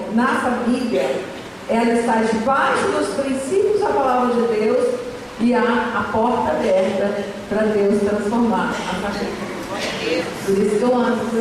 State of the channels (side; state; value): both; identical; correlation 1.00